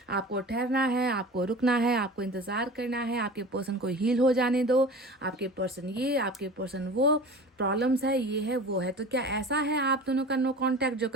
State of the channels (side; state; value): both; normal; correlation 0.37